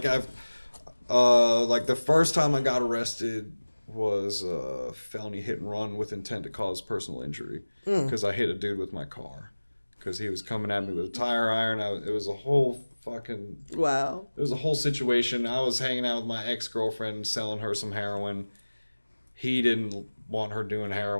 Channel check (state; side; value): inverted; both; correlation -1.00